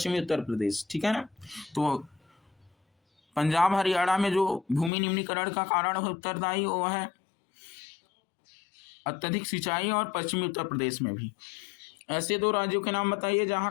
उत्तर प्रदेश, ठीक है ना। तो पंजाब हरियाणा में जो भूमि निम्नीकरण का कारण उत्तरदायी वो है अत्यधिक सिंचाई, और पश्चिमी उत्तर प्रदेश में भी। ऐसे दो राज्यों के नाम बताइए जहां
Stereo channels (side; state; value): right; drops out; at 4.9 s